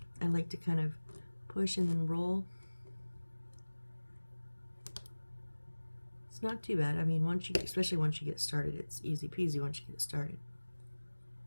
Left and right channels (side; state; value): both; inverted; correlation -1.00